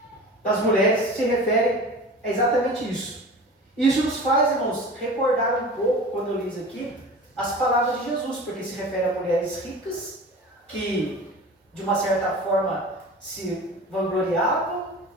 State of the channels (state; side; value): normal; both; correlation 0.37